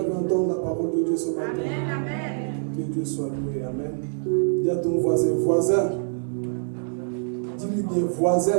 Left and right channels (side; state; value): left; silent; digital silence